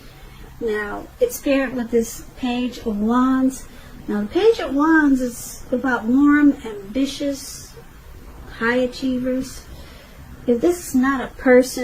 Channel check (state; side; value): identical; both; correlation 1.00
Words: Now, it's paired with this Page of Wands. Now, the Page of Wands is about warm, ambitious, high achievers. If this is not a